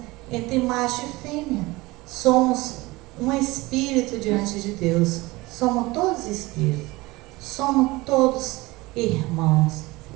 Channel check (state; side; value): quieter; left; 21.4 dB